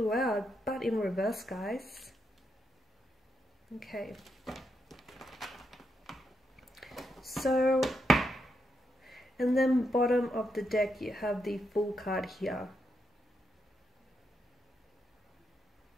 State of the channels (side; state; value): both; normal; correlation 0.81